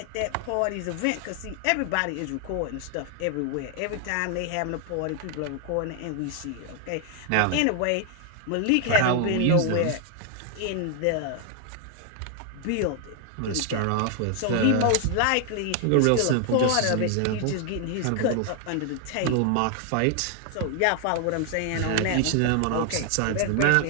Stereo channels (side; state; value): both; different; correlation 0.00